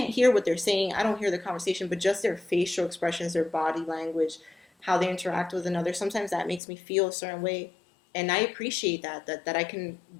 hear what they're saying. I don't hear the conversation, but just their facial expressions, their body language, how they interact with another. Sometimes that makes me feel a certain way, and I appreciate that I can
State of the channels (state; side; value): drops out; right; at 6.6 s